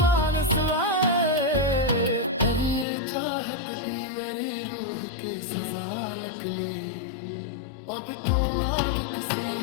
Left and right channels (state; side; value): drops out; right; at 2.9 s